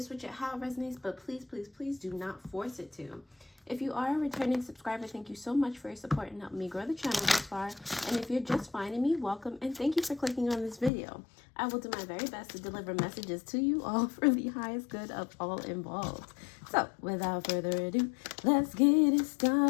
switch it, how it resonates, but please, please, please do not force it to. If you are a returning subscriber, thank you so much for your support and helping me grow the channel this far. And if you're just finding me, welcome and thank you for clicking on this video. I will do my very best to deliver messages to you all for the highest good of all involved. So, without further ado, let's get it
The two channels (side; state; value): right; drops out; at 10.9 s